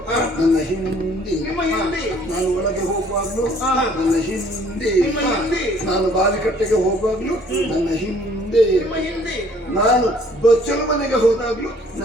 ನನ್ನ ಹಿಂದೆ ನಿಮ್ಮ ಹಿಂದೆ ನಾನು ಒಳಗೆ ಹೋಗುವಾಗ್ಲೂ ನನ್ನ ಹಿಂದೆ ನಿಮ್ಮ ಹಿಂದೆ ನಾನು ಬಾವಿಕಟ್ಟೆಗೆ ಹೋಗುವಾಗ್ಲೂ ನನ್ನ ಹಿಂದೆ ನಿಮ್ಮ ಹಿಂದೆ ನಾನು ಬಚ್ಚಲು ಮನೆಗೆ ಹೋದಾಗ್ಲೂ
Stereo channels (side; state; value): both; normal; correlation 0.58